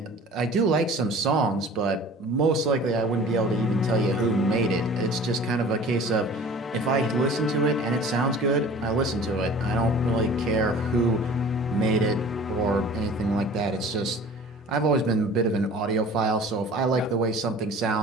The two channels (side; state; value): both; normal; correlation 0.44